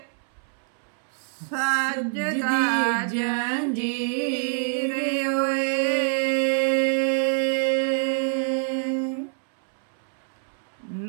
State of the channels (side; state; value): left; silent; 61 dB below the other